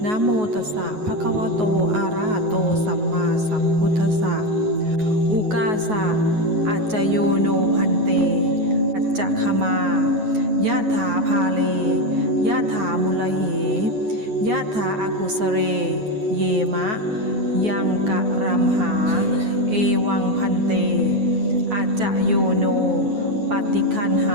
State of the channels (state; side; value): late; left; 9.4 ms